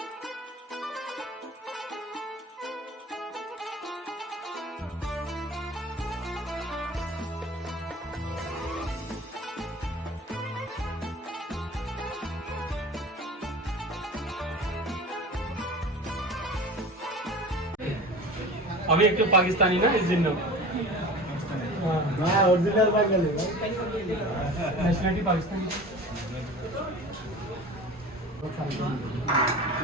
अभी एक तो पाकिस्तानी ना इस दिन ओरिजिनल बांग्लादेशी नेशनलिटी पाकिस्तानी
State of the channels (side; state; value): both; normal; correlation 0.37